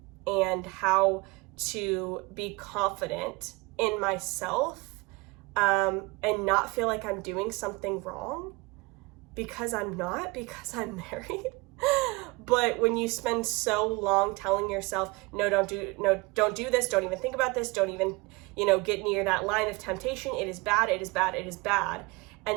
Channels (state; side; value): quieter; left; 25.1 dB